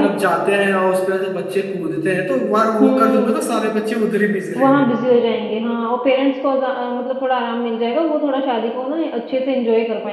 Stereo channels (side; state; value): both; identical; correlation 1.00